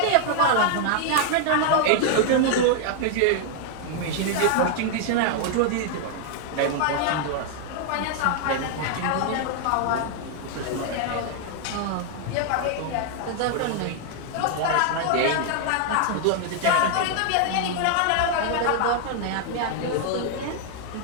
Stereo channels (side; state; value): both; different; correlation 0.00